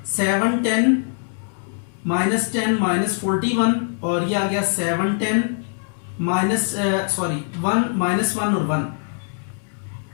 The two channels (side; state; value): right; silent; 64 dB below the other